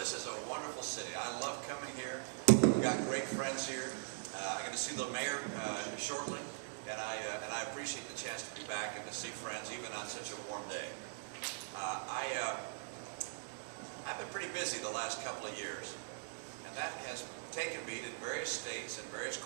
is a wonderful city. I love coming here. We've got great friends here. I'm going to see the mayor shortly, and I appreciate the chance to be back and to see friends even on such a warm day. I've been pretty busy the last couple of years, and that has taken me to various states and various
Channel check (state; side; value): silent; left; digital silence